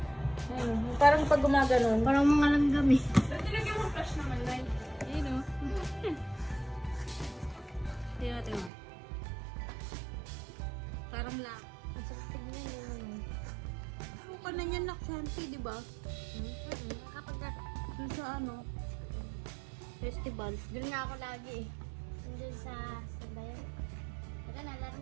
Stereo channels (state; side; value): drops out; left; at 8.7 s